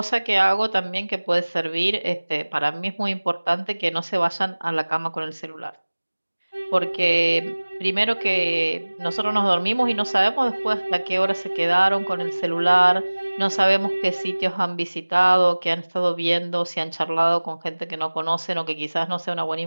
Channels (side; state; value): both; inverted; correlation -1.00